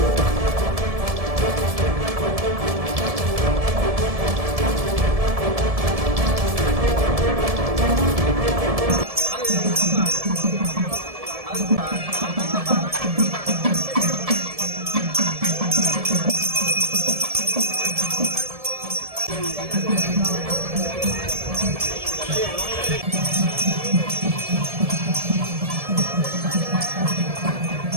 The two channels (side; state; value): left; late; 1.7 ms